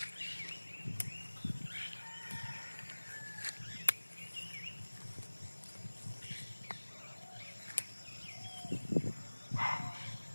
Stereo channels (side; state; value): both; inverted; correlation -1.00